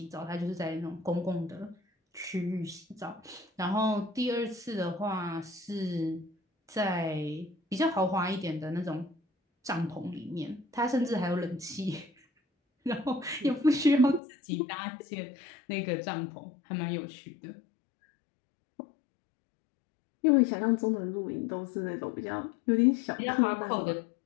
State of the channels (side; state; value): right; drops out; at 14.2 s